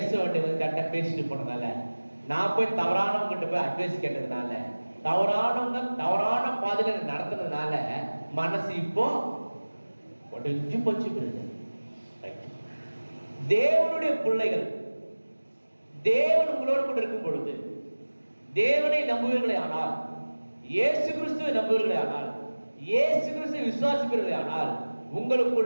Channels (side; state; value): both; inverted; correlation -1.00